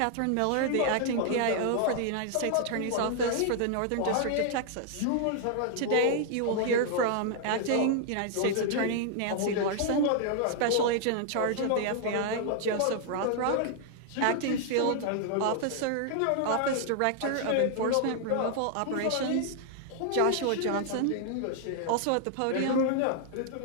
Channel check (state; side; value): different; both; correlation 0.00